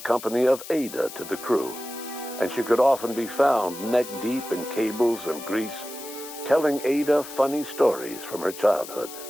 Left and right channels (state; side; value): noise; left; hiss, 13 dB below the sound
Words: of Ada to the crew, and she could often be found neck-deep in cables and grease, telling Ada funny stories from her childhood.